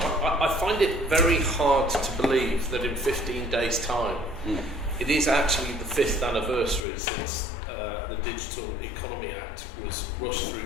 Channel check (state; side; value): drops out; right; at 6.9 s